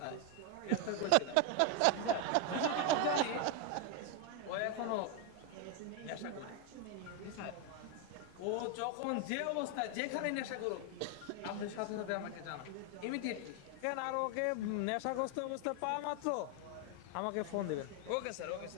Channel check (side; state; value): both; different; correlation 0.01